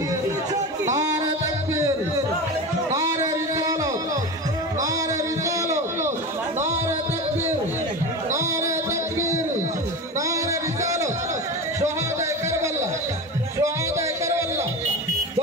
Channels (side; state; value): both; normal; correlation 0.26